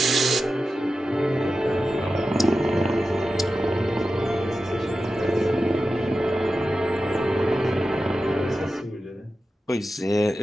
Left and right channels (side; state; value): both; normal; correlation 0.92